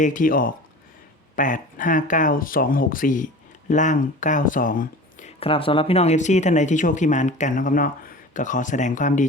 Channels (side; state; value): both; normal; correlation 0.37